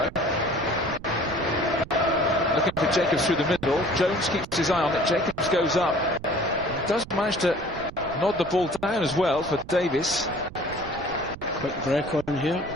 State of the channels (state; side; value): noise; right; rumble, 15 dB below the sound